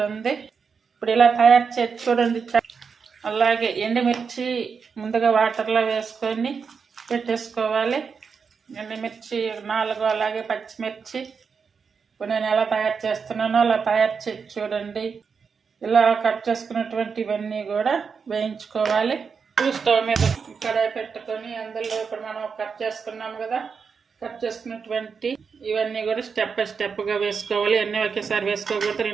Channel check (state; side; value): quieter; left; 5.8 dB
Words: ఇప్పుడు ఇలా తయారు చేసి చూడండి. అలాగే ఎండుమిర్చి ముందుగా వాటర్లో వేసుకొని పెట్టేసుకోవాలి. ఎండుమిర్చి 4, అలాగే పచ్చిమిర్చి. ఇప్పుడు నేను ఎలా తయారు చేస్తున్నానో అలా తయారు చేసి చూడండి. ఇలా కట్ చేసుకున్నటువంటివన్నీ కూడా వేయించుకోవాలి. స్టవ్ మీద కడాయి పెట్టుకొని అందులో ఇప్పుడు మనం కట్ చేసుకున్నాం కదా, కట్ చేసుకున్నటువంటి ఇవన్నీ కూడా స్టెప్ బై స్టెప్గా వేసుకోవాలి. అన్నీ ఒకేసారి వేసుకోకపోతే